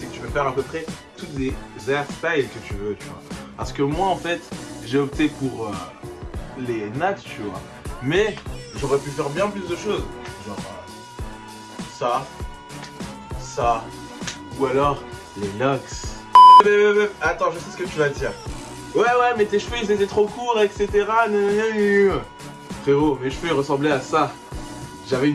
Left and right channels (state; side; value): identical; both; correlation 1.00